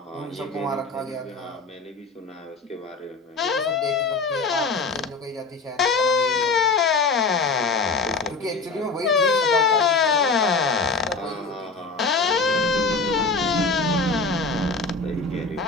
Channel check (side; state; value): right; quieter; 4.2 dB